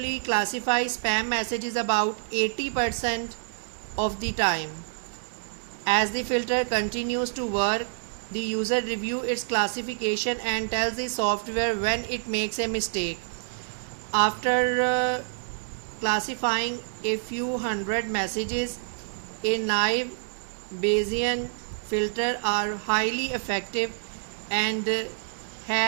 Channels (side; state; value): left; silent; digital silence